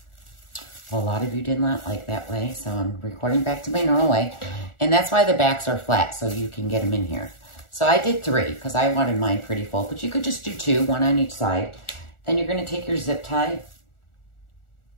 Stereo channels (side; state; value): right; late; 1.4 ms